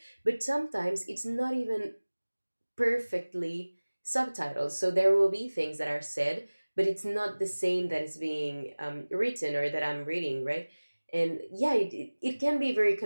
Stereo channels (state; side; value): inverted; both; correlation -1.00